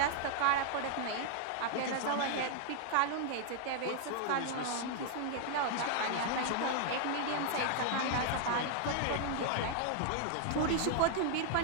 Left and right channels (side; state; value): both; different; correlation 0.00